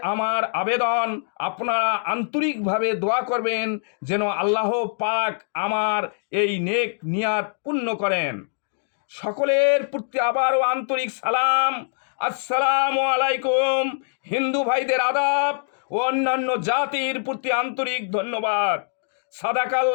আমার আবেদন, আপনারা আন্তরিকভাবে দোয়া করবেন যেন আল্লাহ পাক আমার এই নেক নিয়াত পূর্ণ করেন। সকলের প্রতি আবারও আন্তরিক সালাম, আসসালামু আলাইকুম। হিন্দু ভাইদের আদাব ও অন্যান্য জাতির প্রতি আন্তরিক ধন্যবাদ।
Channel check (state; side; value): silent; right; digital silence